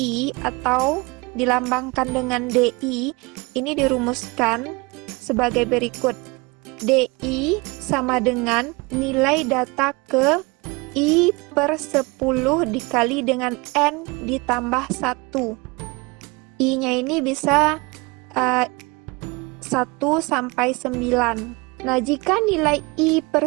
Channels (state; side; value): quieter; left; 25.9 dB